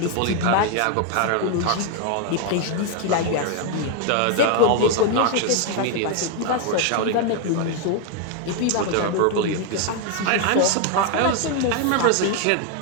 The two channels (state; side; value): different; both; correlation 0.00